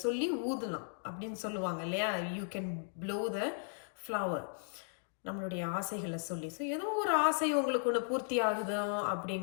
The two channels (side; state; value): right; silent; digital silence